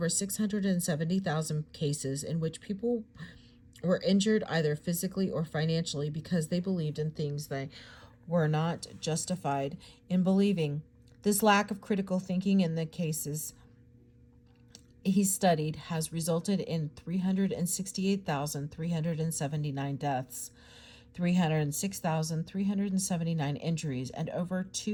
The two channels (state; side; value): identical; both; correlation 1.00